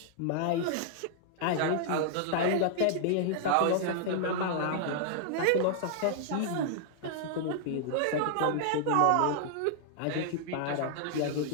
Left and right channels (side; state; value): both; different; correlation -0.01